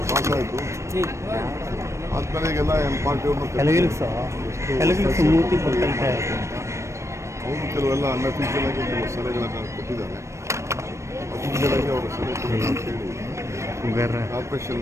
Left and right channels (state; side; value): late; left; 0.14 ms